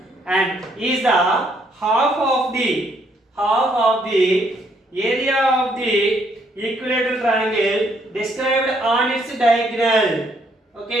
and is the half of the area of the equilateral triangle described on its diagonal.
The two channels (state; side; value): normal; both; correlation 0.69